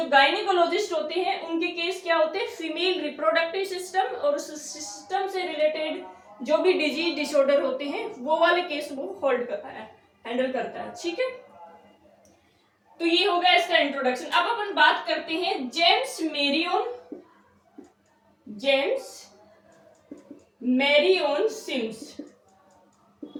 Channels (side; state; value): both; identical; correlation 1.00